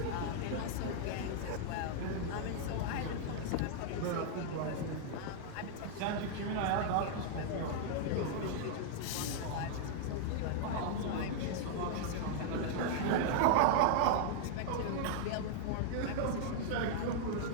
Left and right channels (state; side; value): different; both; correlation -0.01